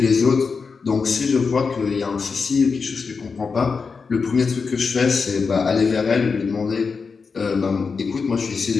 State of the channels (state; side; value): quieter; right; 5.1 dB